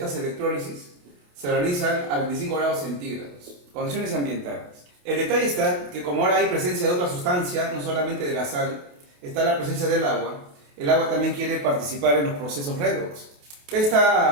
electrólisis, se realizan a 25 grados centígrados, condiciones ambientales. El detalle está que como ahora hay presencia de otra sustancia, no solamente de la sal, está la presencia del agua, el agua también quiere participar en los procesos redox.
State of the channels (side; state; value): left; late; 28 ms